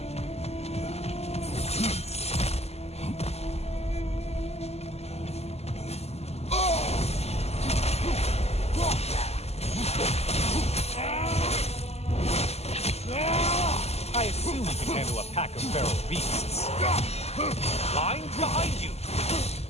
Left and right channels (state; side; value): late; right; 0.30 ms